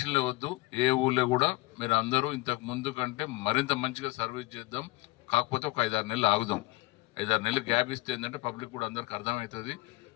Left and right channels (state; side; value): quieter; right; 21.6 dB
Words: వద్దు. ఏ ఊళ్ళో కూడా మీరు అందరూ ఇంతకు ముందు కంటే మరింత మంచిగా సర్వీస్ చేద్దాం. కాకపోతే ఒక 5-6 నెలలు ఆగుదాం. 5-6 నెలలు గ్యాప్ ఇస్తే ఏంటంటే పబ్లిక్ కూడా అందరికి అర్థమవుతుంది.